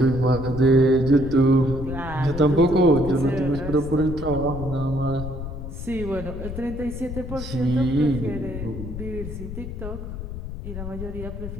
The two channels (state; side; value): noise; left; rumble, 8 dB below the sound